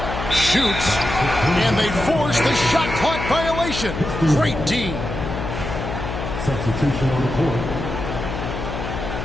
Shoots. And they force the shot clock violation. Great D. Substitution on the court.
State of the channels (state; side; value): noise; left; hum, 6 dB below the sound